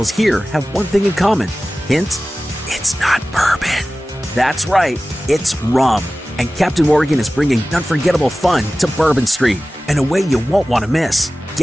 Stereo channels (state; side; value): normal; both; correlation 0.96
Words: here have one thing in common? Hint, it's not bourbon. That's right, it's rum. And Captain Morgan is bringing unforgettable fun to Bourbon Street in a way you won't want to miss.